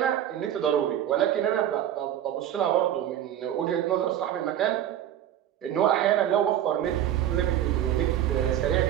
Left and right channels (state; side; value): quieter; left; 11.1 dB